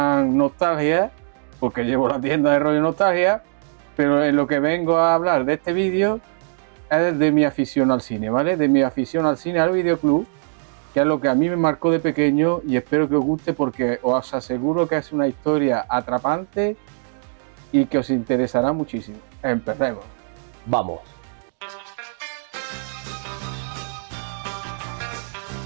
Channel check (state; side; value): silent; left; digital silence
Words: Nostalgia, porque llevo la tienda de rollo Nostalgia, pero en lo que vengo a hablar de este vídeo es de mi afición al cine, ¿vale? De mi afición al cine, al videoclub, que es lo que a mí me marcó de pequeño y espero que os guste porque os aseguro que es una historia atrapante y que os interesará muchísimo. Empecemos. Vamos.